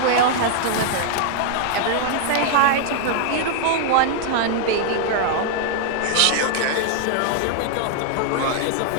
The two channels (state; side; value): different; both; correlation -0.01